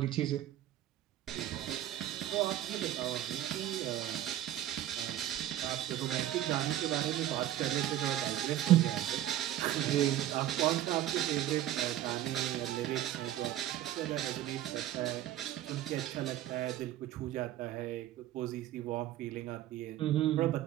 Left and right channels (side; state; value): left; quieter; 12.9 dB